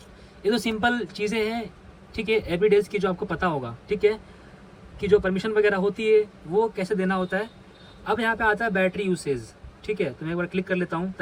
ये तो सिंपल चीज़ें हैं, ठीक है, एवरीडेज की जो आपको पता होगा, ठीक है, कि जो परमिशन वगैरह होती है वो कैसे देना होता है। अब यहाँ पे आता है बैटरी यूसेज, ठीक है, तो मैं एक बार क्लिक कर लेता हूँ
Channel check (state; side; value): identical; both; correlation 1.00